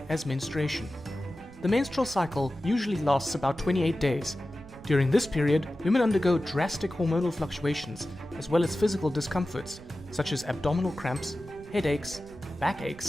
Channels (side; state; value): right; noise; rumble, 19 dB below the sound